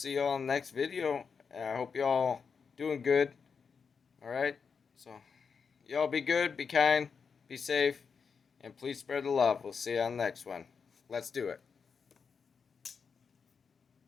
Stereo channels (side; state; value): right; quieter; 5.8 dB